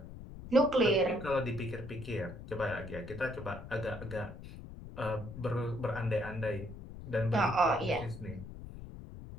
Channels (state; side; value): noise; left; rumble, 12 dB below the sound